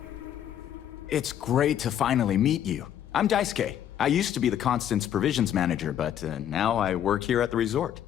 It's great to finally meet you. I'm Daisuke. I used to be the Constance provisions manager, but now I work here at the resort.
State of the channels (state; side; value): quieter; right; 10.2 dB